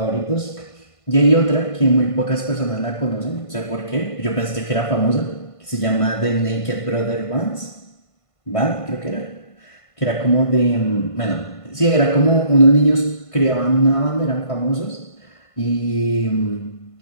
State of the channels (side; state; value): right; late; 1.5 ms